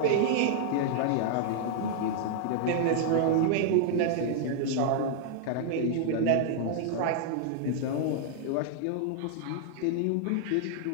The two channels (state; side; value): different; both; correlation -0.01